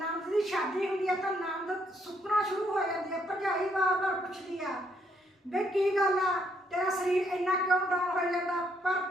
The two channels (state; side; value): normal; both; correlation 0.72